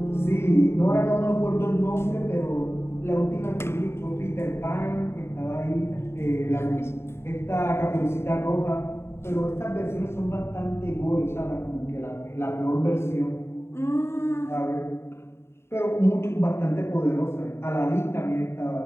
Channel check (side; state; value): right; late; 0.12 ms